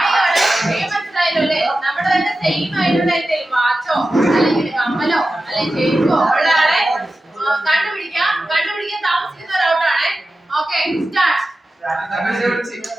മനസ്സിലായല്ലേ? നമ്മുടെ തന്നെ സെയിം ആയിട്ടുള്ള എന്തെങ്കിലും വാച്ചോ അല്ലെങ്കിൽ കമ്മലോ അല്ലെങ്കിൽ ചെരുപ്പോ ഉള്ള ആളെ കണ്ടുപിടിക്കാൻ താമസിക്കുന്ന ഒരൗട്ടാണേ. Okay start.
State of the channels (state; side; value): normal; both; correlation 0.94